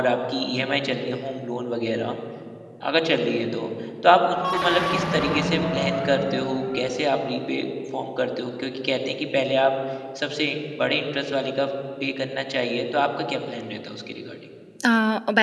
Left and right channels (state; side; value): identical; both; correlation 1.00